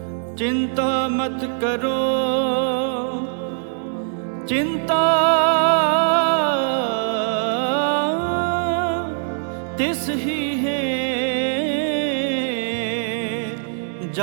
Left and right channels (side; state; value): left; silent; digital silence